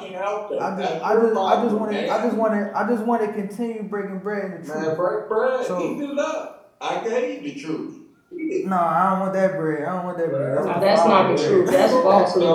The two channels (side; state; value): both; identical; correlation 1.00